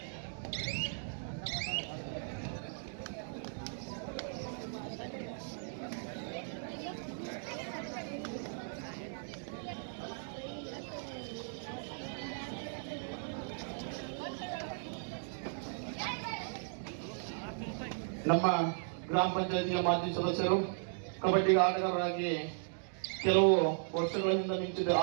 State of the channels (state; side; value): silent; left; digital silence